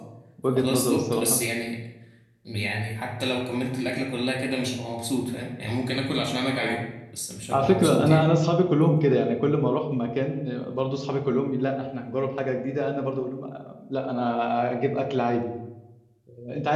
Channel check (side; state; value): both; identical; correlation 1.00